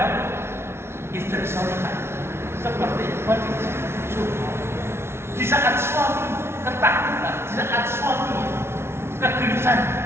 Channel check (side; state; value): left; late; 0.12 ms